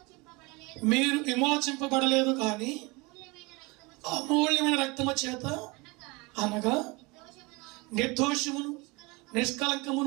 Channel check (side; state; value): left; quieter; 26.0 dB